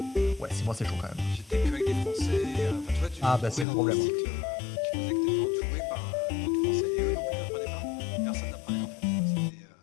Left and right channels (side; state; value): right; drops out; at 3.7 s